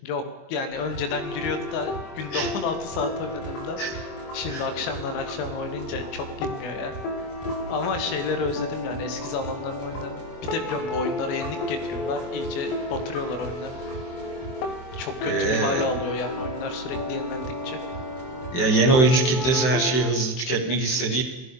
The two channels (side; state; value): right; late; 23 ms